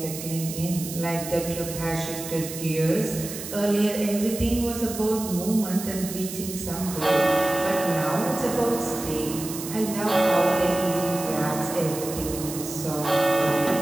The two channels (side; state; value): right; noise; hiss, 9 dB below the sound